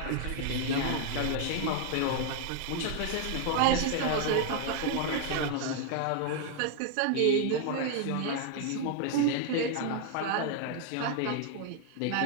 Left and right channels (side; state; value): both; different; correlation 0.00